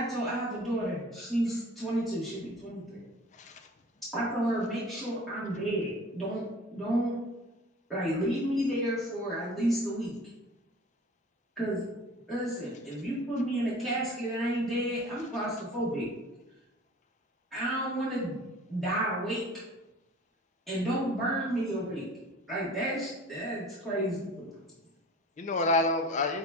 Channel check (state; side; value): normal; both; correlation 0.44